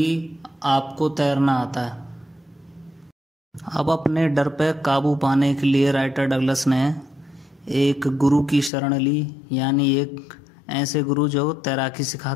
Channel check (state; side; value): drops out; right; at 8.7 s